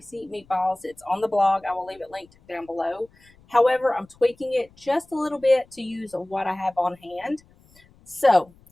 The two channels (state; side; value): noise; left; rumble, 29 dB below the sound